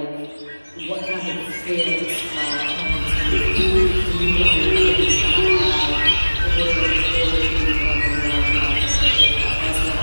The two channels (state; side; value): inverted; both; correlation -1.00